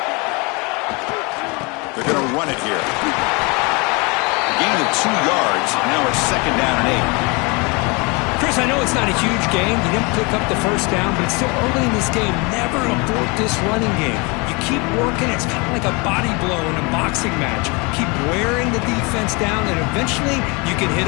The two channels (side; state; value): right; quieter; 28.8 dB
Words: They're going to run it here. A gain of 2 yards. Now it's 2nd down and 8. Chris, I know it's not a huge game. You didn't pick up the first down, but it's still early in this game. Never abort this running game. You keep working. It's kind of like a body blow in a boxing match. Keep wearing the defense down, and eventually you can hit